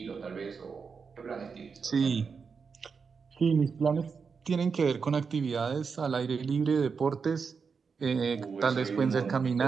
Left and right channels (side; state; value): left; quieter; 5.5 dB